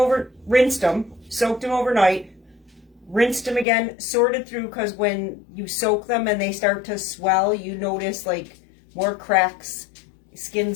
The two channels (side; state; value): right; drops out; at 3.7 s